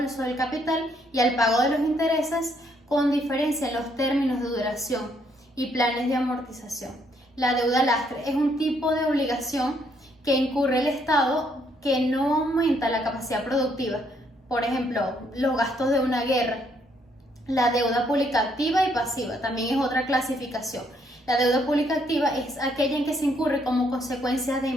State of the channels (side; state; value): both; normal; correlation 0.71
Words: del capital y al pago de los intereses con diferencia en los términos de duración y planes de amortización. La deuda lastre es un tipo de obligación que incurre el Estado que no aumenta la capacidad productiva, por ejemplo, los gastos de una guerra. La deuda pública activa y pasiva también es otra clasificación. La deuda pública activa es aquella en que se incurre como consecuencia de